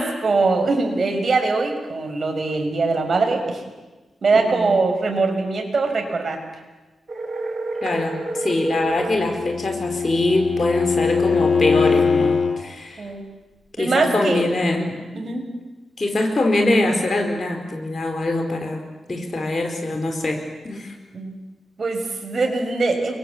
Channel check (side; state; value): both; normal; correlation 0.88